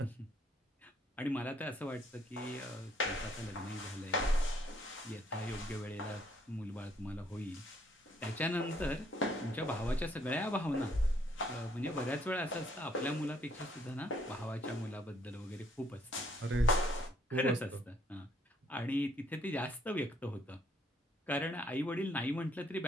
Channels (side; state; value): both; normal; correlation 0.67